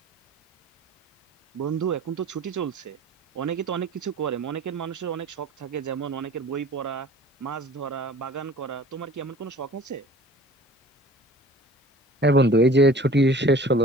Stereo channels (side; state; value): both; normal; correlation 0.46